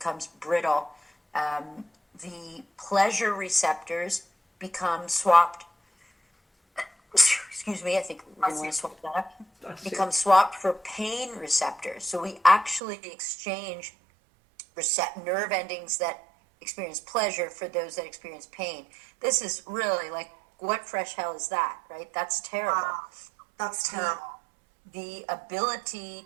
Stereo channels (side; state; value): left; drops out; at 12.8 s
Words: brittle. The pleasure receptors become swapped. Excuse me, I think we want to swap that up. Become swapped for pain receptors. So we actually exchange nerve endings that experience pleasure for those that experience pain. This is really like, what fresh hell is that, right? That's terrible. Wow. That's terrible. The ability